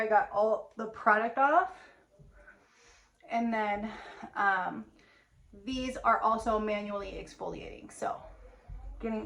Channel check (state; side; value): identical; both; correlation 1.00